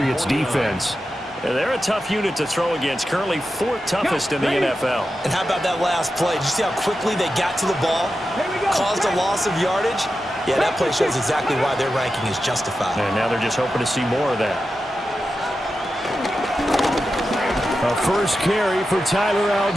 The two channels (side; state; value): both; normal; correlation 0.91